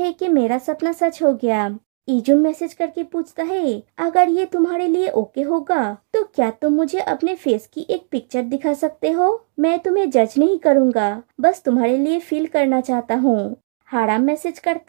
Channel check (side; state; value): left; silent; digital silence